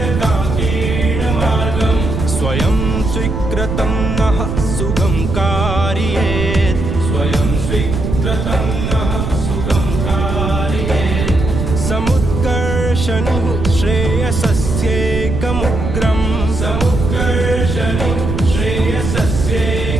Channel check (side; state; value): right; noise; rumble, 2 dB below the sound